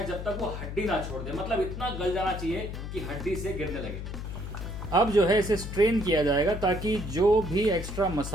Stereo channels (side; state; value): left; noise; hum, 7 dB below the sound